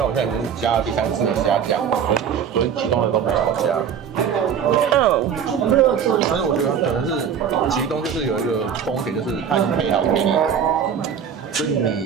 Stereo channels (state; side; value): quieter; left; 7.7 dB